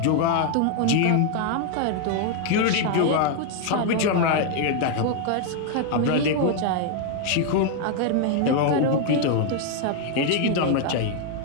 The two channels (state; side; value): different; both; correlation 0.00